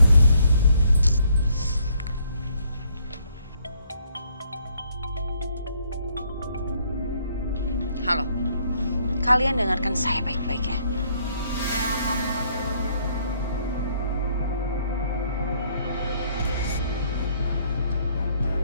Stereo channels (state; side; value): inverted; both; correlation -0.68